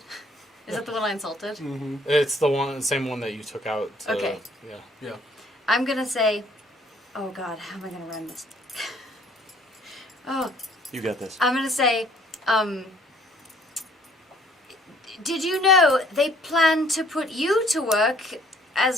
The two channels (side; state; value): both; normal; correlation 0.60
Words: Is that the one I insulted? Mm-hmm. It's the same one that you took out. Okay. Yeah. I'm gonna say, oh God, how am I gonna run this? Oh, You got this. I'm gonna say, did you know they plan to put you to work